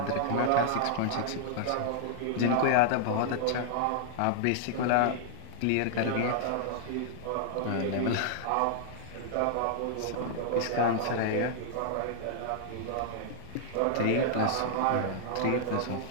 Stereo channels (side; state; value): both; different; correlation -0.01